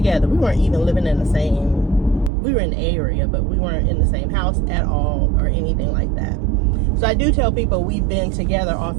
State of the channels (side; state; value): left; drops out; at 2.3 s